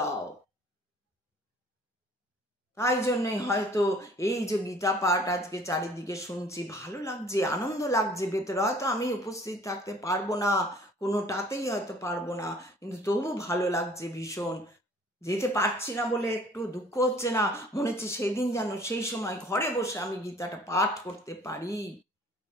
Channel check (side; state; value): both; normal; correlation 0.53